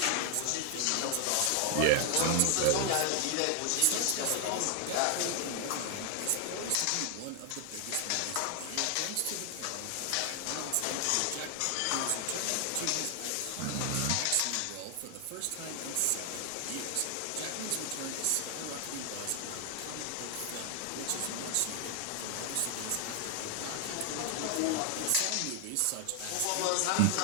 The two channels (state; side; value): different; both; correlation 0.00